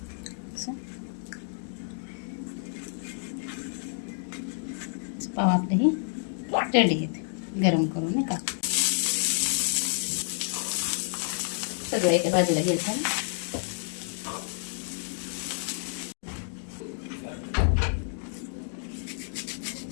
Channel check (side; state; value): right; silent; 58 dB below the other